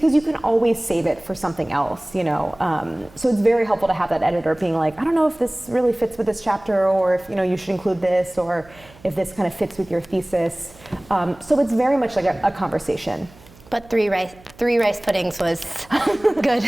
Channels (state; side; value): noise; right; hum, 25 dB below the sound